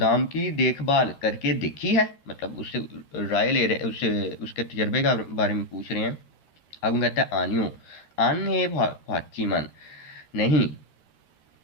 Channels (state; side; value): late; right; 13 ms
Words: की देखभाल करके देखी है, मतलब उससे राय ले रहे, उससे उसके तजर्बे का बारे में पूछ रहे हैं। अब कहता है आनियो, आन है फाची मन, नहीं